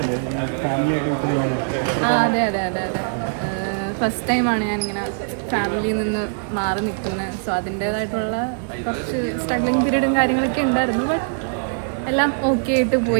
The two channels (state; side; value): silent; left; digital silence